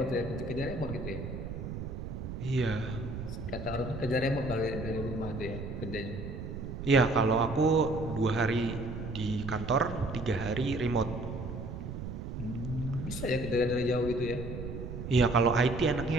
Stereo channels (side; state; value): right; noise; rumble, 7 dB below the sound